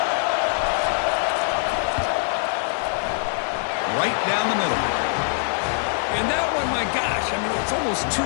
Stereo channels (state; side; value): silent; right; 63 dB below the other